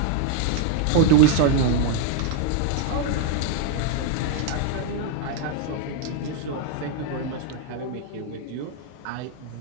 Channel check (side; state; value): both; different; correlation 0.00